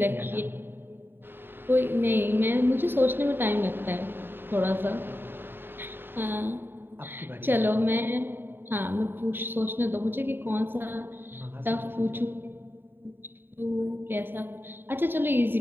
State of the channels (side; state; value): left; late; 0.099 ms